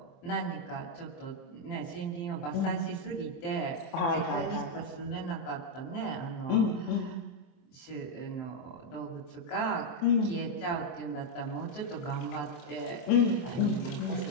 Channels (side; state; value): right; late; 23 ms